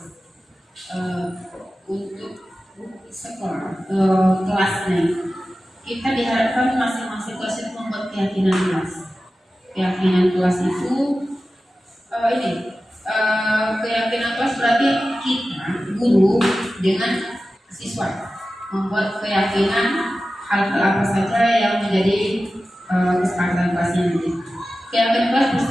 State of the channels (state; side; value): normal; both; correlation 0.94